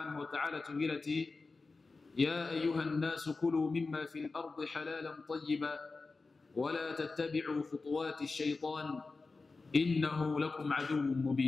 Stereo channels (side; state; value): right; quieter; 3.9 dB